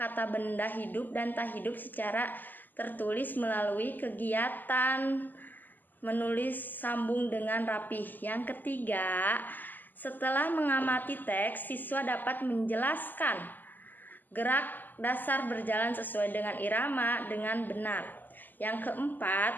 benda hidup dan tak hidup secara tertulis melalui kegiatan menulis sambung dengan rapih. Yang ketiga, setelah mengamati teks, siswa dapat menjelaskan gerak dasar berjalan sesuai dengan irama dengan benar. Yang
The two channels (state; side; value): late; right; 0.087 ms